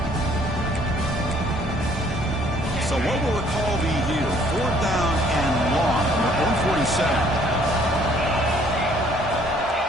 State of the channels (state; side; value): normal; both; correlation 0.61